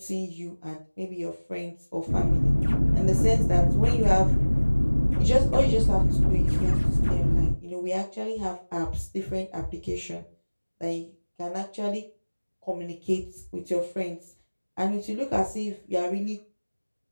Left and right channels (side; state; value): both; inverted; correlation -1.00